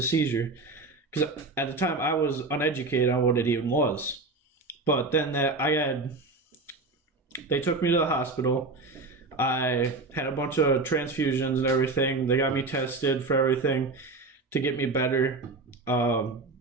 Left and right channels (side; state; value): left; quieter; 3.5 dB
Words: seizure? Because at the time I was uneducated on what it even was. But then they took me to the hospital. I had a bunch of transfusions and everything. They got me tested for everything to get me better. I